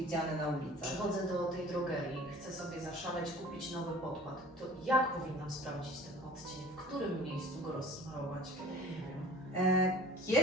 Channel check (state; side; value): normal; both; correlation 0.46